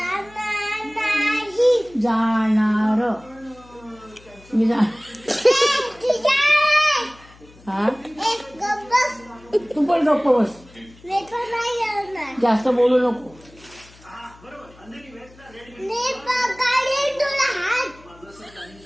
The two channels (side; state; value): left; noise; hum, 25 dB below the sound